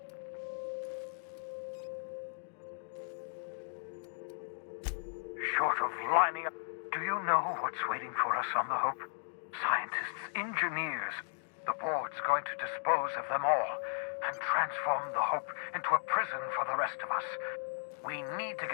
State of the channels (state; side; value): silent; right; digital silence